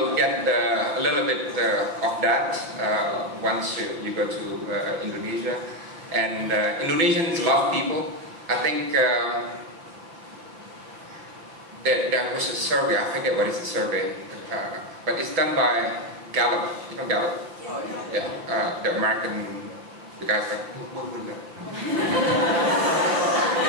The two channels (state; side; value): late; left; 6.0 ms